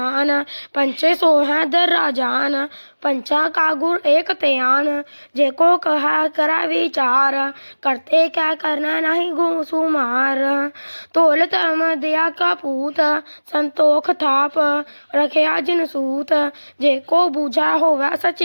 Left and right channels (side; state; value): both; inverted; correlation -1.00